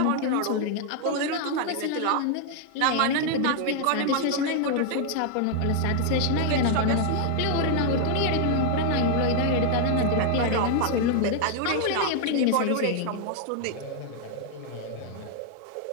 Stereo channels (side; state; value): both; different; correlation 0.00